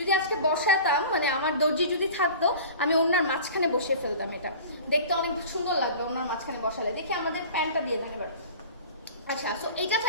আজকে বসাতাম, মানে আমার দর্জি যদি থাকতো, আমি ওড়নার মাঝখানে বসিয়ে ফেলতাম। এটা দেখতে অনেক সুন্দর লাগবে ওড়নার মাঝখানে বসালে। দেখি আমাদের প্যান্টটা দিয়ে দেন এবার। আচ্ছা, সো এটা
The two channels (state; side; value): inverted; both; correlation -0.39